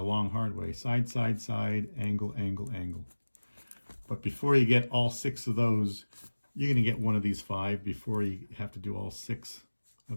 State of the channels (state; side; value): inverted; both; correlation -1.00